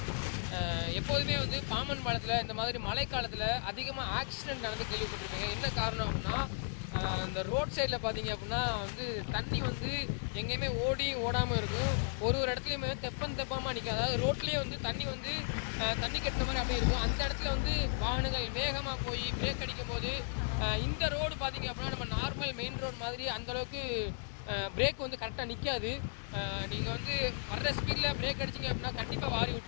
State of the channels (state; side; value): silent; right; 54 dB below the other